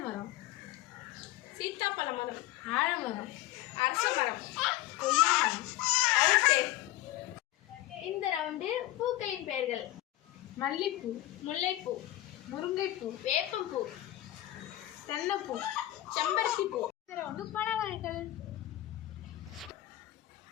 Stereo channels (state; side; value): quieter; right; 15.7 dB